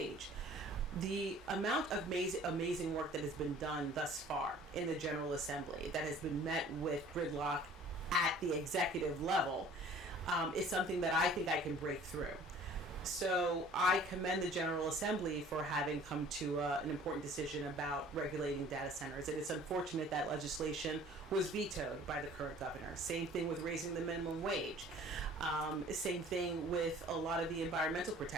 the amount of amazing work that has been done thus far in the General Assembly that has been met with gridlock at the executive level is something that I think I can break through. So I commend the General Assembly for having come to an important decision about regulating data centers. And it's unfortunate that legislation was vetoed by the current governor. Same thing with raising the minimum wage. Same thing with a lot of the environmental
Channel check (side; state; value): both; normal; correlation 0.50